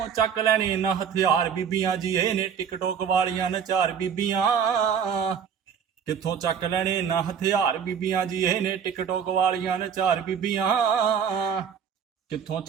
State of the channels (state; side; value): quieter; left; 7.5 dB